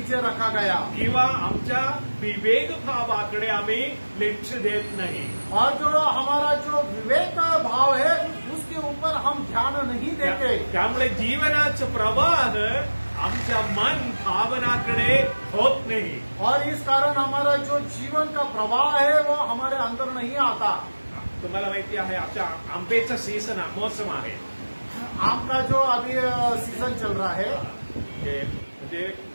रखा गया. किंवा आमच्या विवेक भावाकडे आम्ही लक्ष देत नाही. और जो हमारा जो विवेक भाव है उसके ऊपर हम ध्यान नहीं देते. त्यामुळे जीवनाचं प्रवाह आमच्या मन भावनाकडे होत नाही. और इस कारण हमारा जो जीवन का प्रवाह है वो हमारे अंदर नहीं आता. तुम्हाला माहिती आहे आमच्या आंब्याचा सीझन मौसम आहे. आम का जो अभी सीजन चल रहा है. म्हणजे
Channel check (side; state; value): both; inverted; correlation -1.00